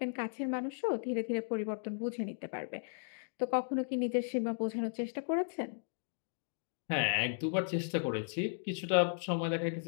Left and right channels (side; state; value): right; silent; digital silence